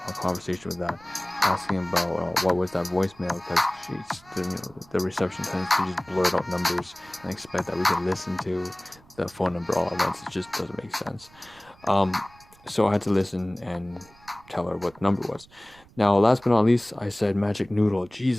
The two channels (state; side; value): noise; right; rumble, 26 dB below the sound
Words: a conversation with that, asking about what was that voicemail, because the reception tends to just blurt out numbers and expect that we can listen to the phone number all at once. It just doesn't make sense. So I had to listen and tell her what the number was. Now, last but not least, I said magic noodle.